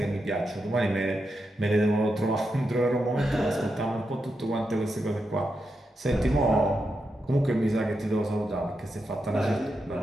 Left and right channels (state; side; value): normal; both; correlation 0.86